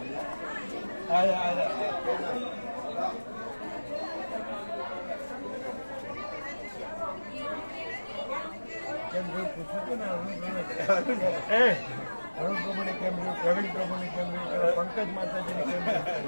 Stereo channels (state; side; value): inverted; both; correlation -1.00